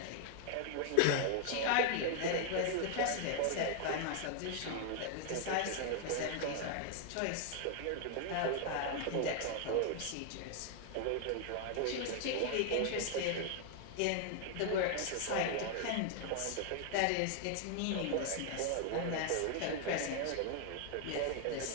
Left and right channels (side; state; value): both; different; correlation 0.00